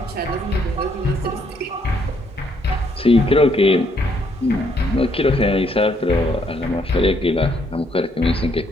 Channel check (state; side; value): normal; both; correlation 0.70